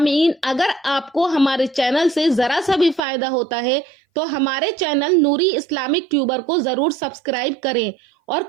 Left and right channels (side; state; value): left; drops out; at 3.0 s